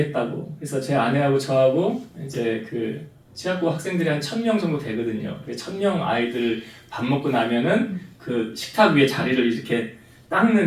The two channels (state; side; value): identical; both; correlation 1.00